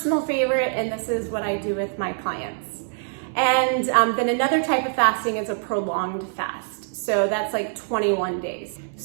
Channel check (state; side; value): silent; left; digital silence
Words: favorite, and this is what I do with my clients. And then another type of fasting is a prolonged fast. So that's like 21 days.